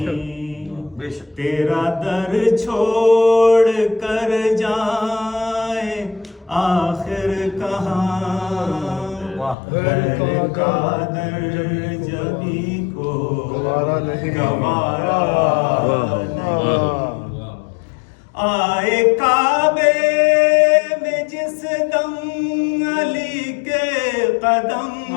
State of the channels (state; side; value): drops out; right; at 9.6 s